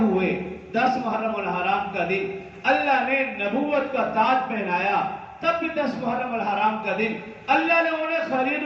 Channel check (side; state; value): both; identical; correlation 1.00